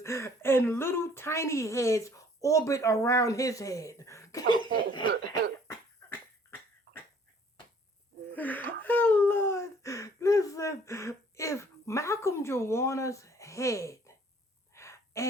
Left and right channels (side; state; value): both; normal; correlation 0.57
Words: and little tiny heads orbit around his head. Oh Lord, listen, if Malcolm Joanna's head